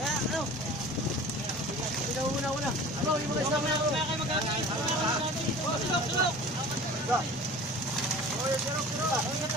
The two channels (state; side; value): normal; both; correlation 0.41